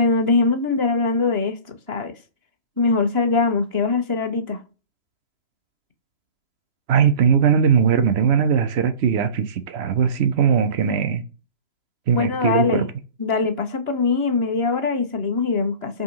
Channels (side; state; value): left; late; 2.9 ms